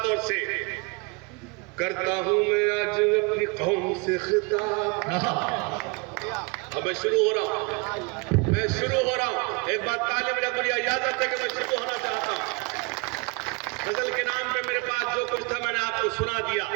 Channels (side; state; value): left; quieter; 29.6 dB